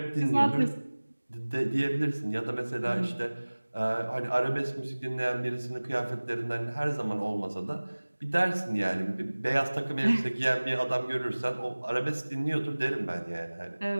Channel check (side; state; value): both; inverted; correlation -1.00